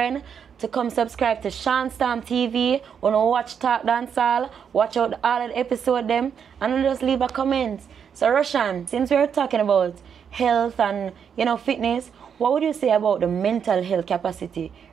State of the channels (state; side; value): quieter; left; 7.4 dB